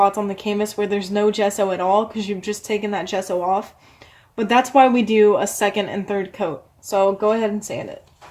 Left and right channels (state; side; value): identical; both; correlation 1.00